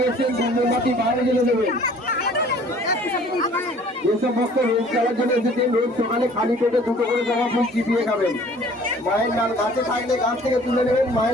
মোমবাতি বাইরে জেলে দেবেন। যেসব ভক্ত রোজ চালার জন্য এসেছেন রোজ সকালে খালি পেটে দুটো করে জমা ফুল চিপিয়ে খাবেন। মায়ের নাম গাছে থাকলে গাছ থেকে তুলে নেবেন,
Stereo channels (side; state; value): both; normal; correlation 0.52